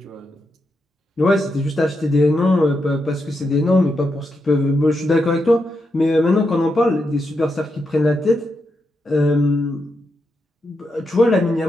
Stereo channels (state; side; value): normal; both; correlation 0.84